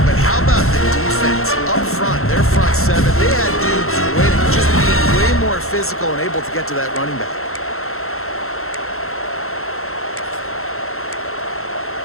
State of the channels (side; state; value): right; late; 0.62 ms